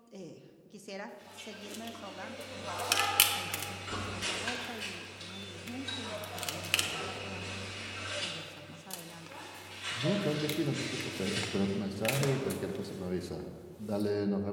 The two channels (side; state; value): both; identical; correlation 1.00